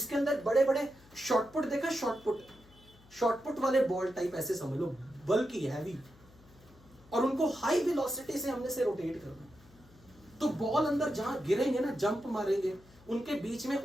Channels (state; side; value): noise; left; hum, 26 dB below the sound